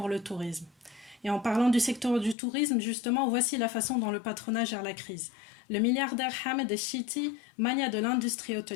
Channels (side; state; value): right; drops out; at 2.4 s